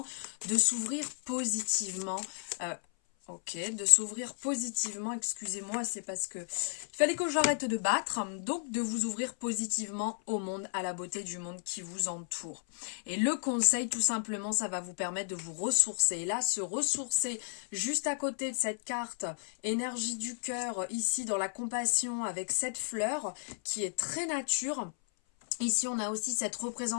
de s'ouvrir positivement, de s'ouvrir positivement, excusez-moi, c'est parce que il fallait que j'arrête de battre, donc de vous ouvrir positivement au monde, à la beauté du monde qui vous entoure. Et le conseil, tout simplement, ça va vous permettre de vous ressourcer. Et là, se ressourcer juste à côté de cette carte, énergie du cœur, ici dans la compassion, avec cette fleur qui est très nature. Ici, on a aussi cette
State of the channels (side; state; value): right; silent; 55 dB below the other